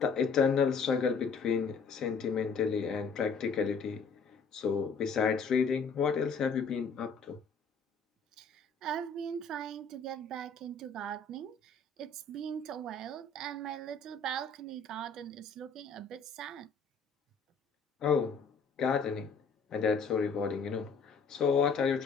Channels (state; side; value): quieter; right; 4.6 dB